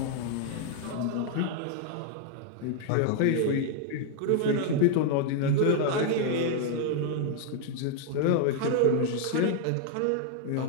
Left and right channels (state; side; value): different; both; correlation 0.00